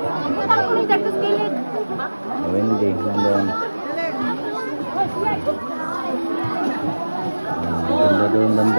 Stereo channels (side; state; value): both; inverted; correlation -1.00